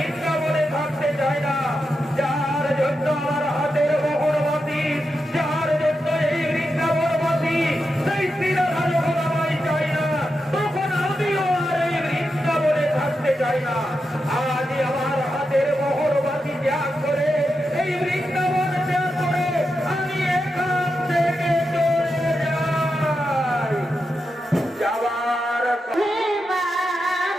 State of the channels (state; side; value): normal; both; correlation 0.88